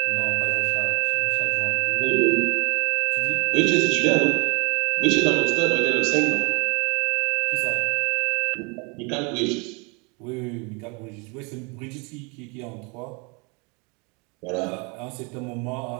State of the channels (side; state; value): left; quieter; 31.4 dB